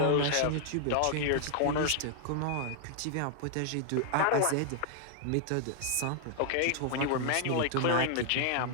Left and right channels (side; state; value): both; different; correlation -0.01